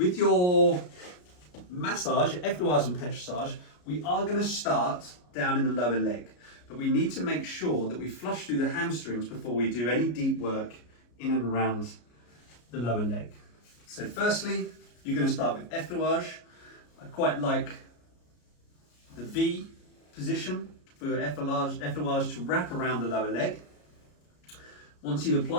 your massage, Effleurage and Petrissage, we are going to start down in the lower leg, but we need to make sure that we flush through the hamstrings before we do any deep work in and around the lower leg. So firstly, you're going to start with Effleurage. I quite like the V position for your Effleurage to wrap around the lower leg. Once you've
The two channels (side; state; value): right; late; 33 ms